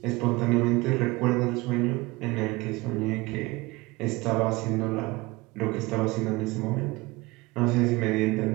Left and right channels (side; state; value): left; quieter; 22.0 dB